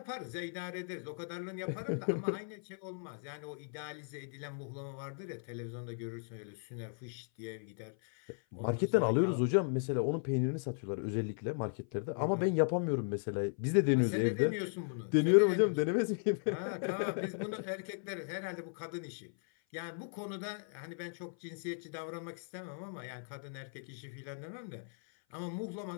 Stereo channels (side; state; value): right; silent; 53 dB below the other